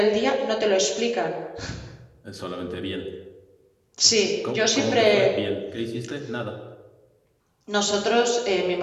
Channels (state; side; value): identical; both; correlation 1.00